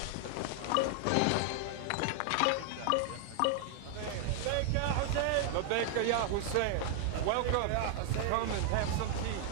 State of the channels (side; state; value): both; different; correlation 0.00